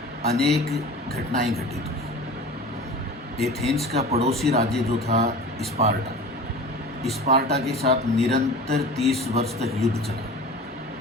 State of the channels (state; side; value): normal; both; correlation 0.37